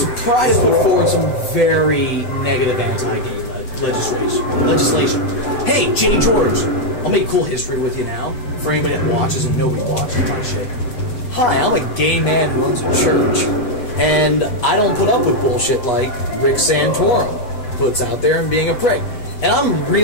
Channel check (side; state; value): right; late; 8.2 ms